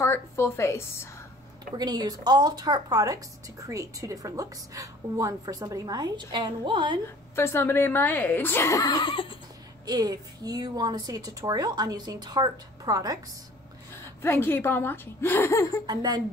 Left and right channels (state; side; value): normal; both; correlation 0.50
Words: Full Face. We're going to use all Tarte products to create two different looks. One for somebody my age and one for somebody my age. If you want to see a tutorial on using Tarte products, then keep on watching. And then